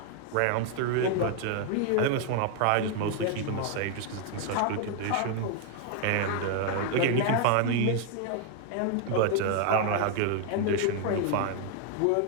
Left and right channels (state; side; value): different; both; correlation 0.00